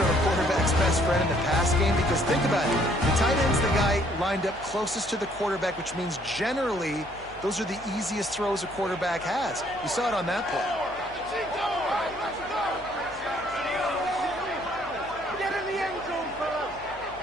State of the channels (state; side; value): noise; left; hum, 21 dB below the sound